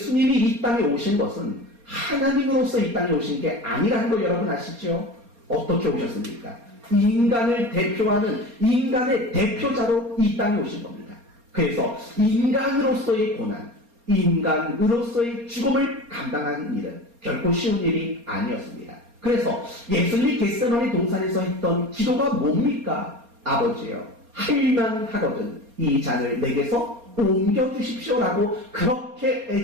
이 땅에 오신 것은 하나님으로서 이 땅에 오신 게 아니라는 거 여러분 아시죠? 어떻게 오셨습니까? 인간을 대표하는 인간의 대표자로 이 땅에 오신 겁니다. 그래서 인간으로서의 고난, 인간으로서의 죽음을 감당하는 일은 결코 쉬운 일이 아니었습니다. 그래서 예수님이 겟세마네 동산에서 했던 기도가 뭡니까? 아버지여, 할만 하거든 이 잔을 내게서 옮겨주십시오라고 그렇게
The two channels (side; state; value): left; late; 4.3 ms